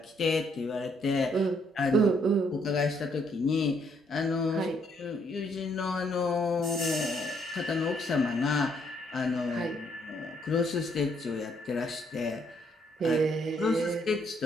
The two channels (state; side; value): normal; both; correlation 0.70